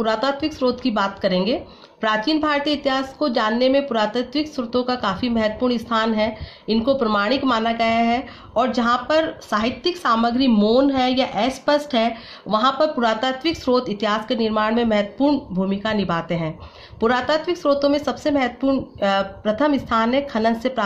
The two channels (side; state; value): both; identical; correlation 1.00